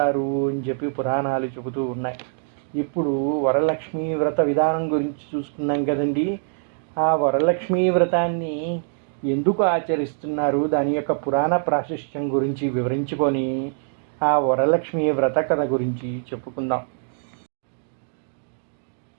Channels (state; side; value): silent; left; digital silence